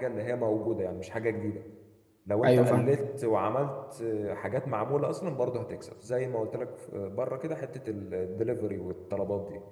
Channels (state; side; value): identical; both; correlation 1.00